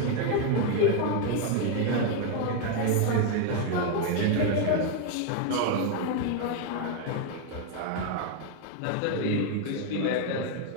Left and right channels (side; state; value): both; different; correlation 0.00